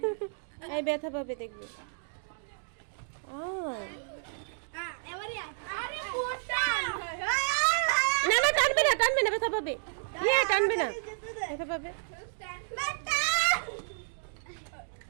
এই ব্যথা পাবে দেখবে। এবারে আরে মোটা। না না, টানবে না টানবে না, ব্যথা পাবে। ইয়ে টানবে না, ব্যথা পাবে।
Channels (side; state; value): left; silent; digital silence